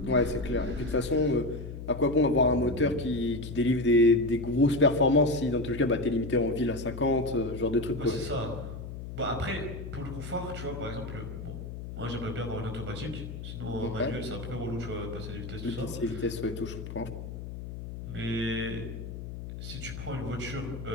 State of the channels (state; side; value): noise; left; hum, 9 dB below the sound